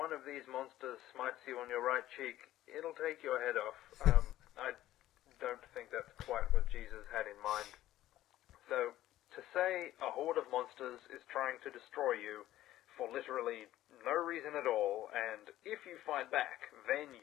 of these monsters smites you on your right cheek, it'll take your head off. I don't think that's quite what Jesus had in mind. So, to say a horde of monsters is trying to destroy you for literally no reason at all, and if you fight back, then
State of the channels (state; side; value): quieter; right; 14.2 dB